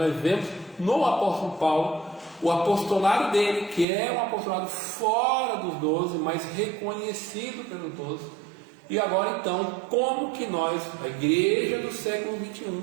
vemos no apóstolo Paulo o apostolado dele, que é um apostolado fora dos 12, mas reconhecido pelos 12. E agora então, como que nós, a igreja do século 21,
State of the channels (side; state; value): left; drops out; at 3.9 s